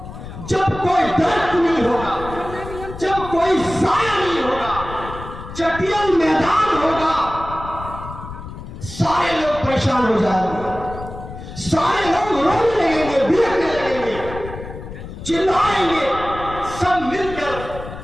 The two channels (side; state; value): left; noise; rumble, 12 dB below the sound